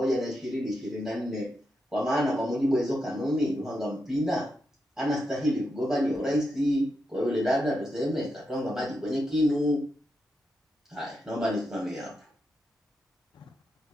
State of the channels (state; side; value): normal; both; correlation 0.85